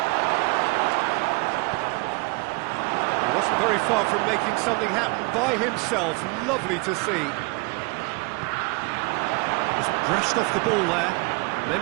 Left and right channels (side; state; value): left; quieter; 28.1 dB